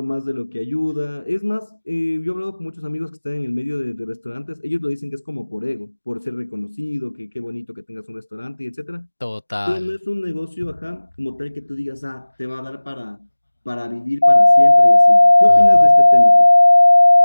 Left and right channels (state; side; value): inverted; both; correlation -1.00